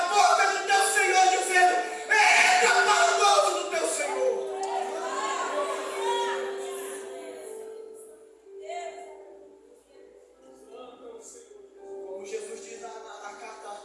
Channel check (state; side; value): identical; both; correlation 1.00